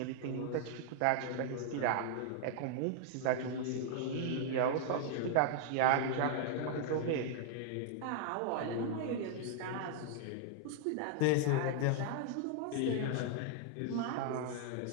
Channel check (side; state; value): both; different; correlation 0.00